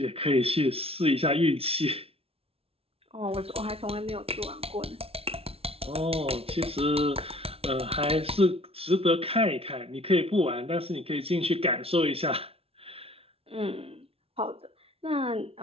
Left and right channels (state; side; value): late; left; 0.28 ms